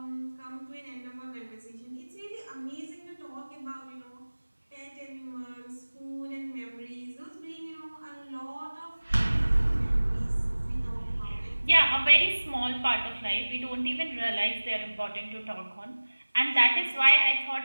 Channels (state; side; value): inverted; both; correlation -1.00